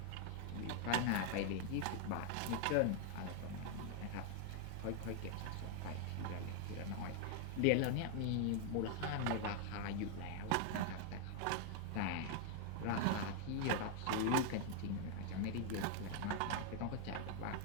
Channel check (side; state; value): both; different; correlation 0.00